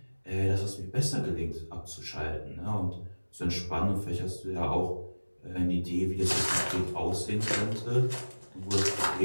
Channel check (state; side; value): inverted; both; correlation -1.00